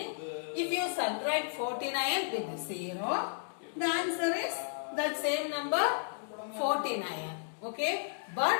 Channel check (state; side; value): silent; right; digital silence